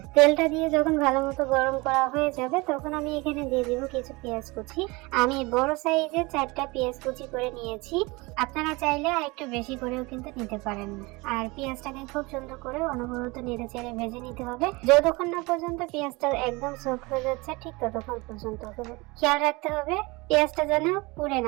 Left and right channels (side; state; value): left; quieter; 24.6 dB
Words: তেলটা দিয়ে যখন ভালো মতো গরম করা হয়ে যাবে তখন আমি এখানে দিয়ে দিব কিছু পেঁয়াজ কুচি। আমি বড় সাইজের 4টা পেঁয়াজ কুচি করে নিয়েছি। আপনারা চাইলে আর একটু বেশি করেও কিন্তু নিতে পারেন। আর পেঁয়াজটাকে খুব সুন্দর করে অনবরত নেড়ে চেড়ে ভেজে নিতে হবে। যতক্ষণ না পর্যন্ত পেঁয়াজটা একদম সফট হয়ে যাচ্ছে ঠিক ততক্ষণ পর্যন্ত খেয়াল রাখতে হবে পেঁয়াজটা যেন পুড়ে